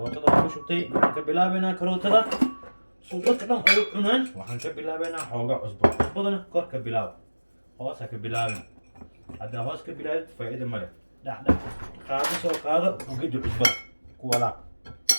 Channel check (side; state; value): both; inverted; correlation -1.00